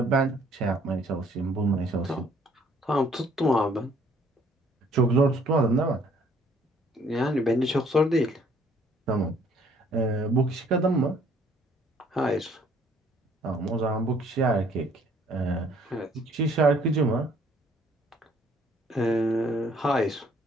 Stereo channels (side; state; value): both; normal; correlation 0.61